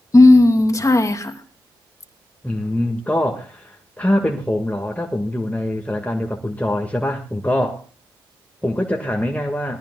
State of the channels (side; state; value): both; normal; correlation 0.94